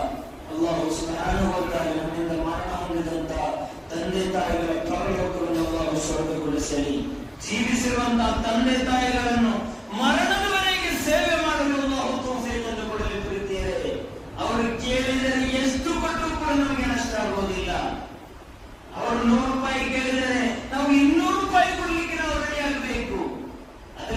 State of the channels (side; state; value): both; identical; correlation 1.00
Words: ಅಲ್ಲಾಹು ಸುಬ್ಹಾನಹು ವ ತಆಲಾ ನಮ್ಮಿಂದ ಮರಣ ಹೊಂದಿದಂತ ತಂದೆ ತಾಯಿಗಳ ಪರಲೋಕವನ್ನು ಅಲ್ಲಾಹು ಸ್ವರ್ಗಗೊಳಿಸಲಿ. ಜೀವಿಸಿರುವಂತಹ ತಂದೆ ತಾಯಿಗಳನ್ನು ಮರಣದವರೆಗೆ ಸೇವೆ ಮಾಡಲು ಅಲ್ಲಾಹು ತೌಫೀಕನ್ನು ಕೊಡಲಿ. ಪ್ರೀತಿಯರೇ, ಅವರು ಕೇಳಿದರೆ ಎಷ್ಟು ಕೊಟ್ಟರೂ ಕೂಡ ನಮಗೆ ನಷ್ಟ ಆಗುವುದಿಲ್ಲ. ಅವರು 100 ರೂಪಾಯಿ ಕೇಳಿದರೆ ನಾವು 200 ರೂಪಾಯಿ ಕೊಡ್ಲಿಕ್ಕೆ ನಾವು ರೆಡಿ ಆಗಬೇಕು.